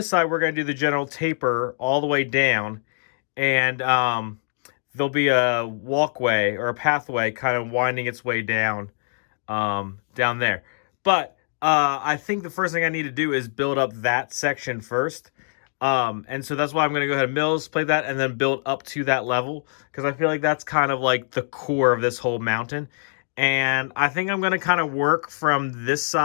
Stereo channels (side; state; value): right; silent; digital silence